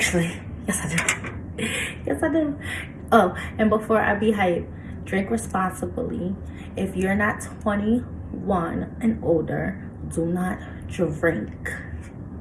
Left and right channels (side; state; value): both; identical; correlation 1.00